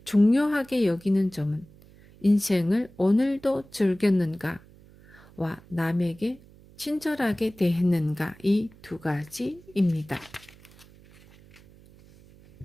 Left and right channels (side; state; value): right; noise; hum, 25 dB below the sound